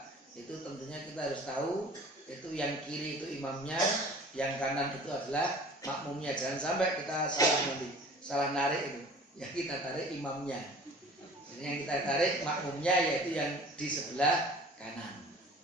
itu tentunya kita harus tahu itu yang kiri itu imamnya, yang kanan itu adalah makmumnya. Jangan sampai kita salah narik itu. Yang kita tarik imamnya. Jadi yang kita tarik makmumnya, yaitu yang di sebelah kanan.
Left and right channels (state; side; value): normal; both; correlation 0.45